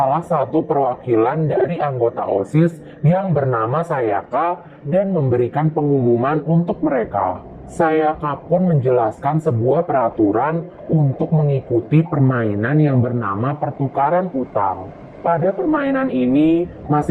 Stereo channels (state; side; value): identical; both; correlation 1.00